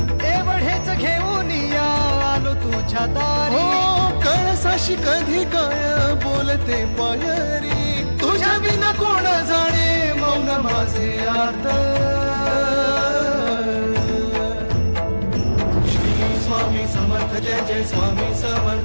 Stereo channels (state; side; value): inverted; both; correlation -1.00